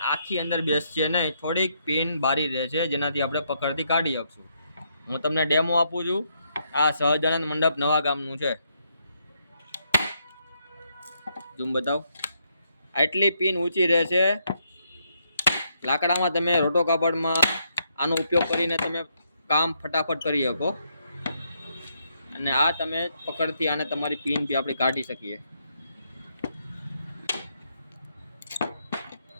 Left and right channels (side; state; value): both; inverted; correlation -0.76